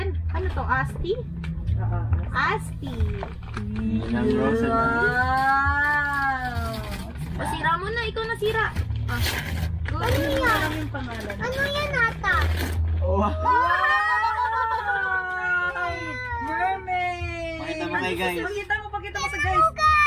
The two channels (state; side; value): identical; both; correlation 1.00